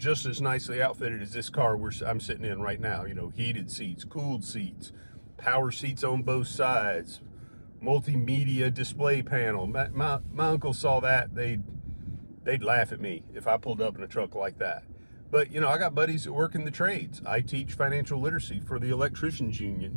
as nicely outfitted as this car I'm sitting in right now. Heated seats, cooled seats, power seats on both sides, multimedia display panel. My uncle saw that, they'd laugh at me if I pulled up in a truck like that. But, I got buddies that work in the trades. I teach financial literacy for the electricians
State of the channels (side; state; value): both; inverted; correlation -1.00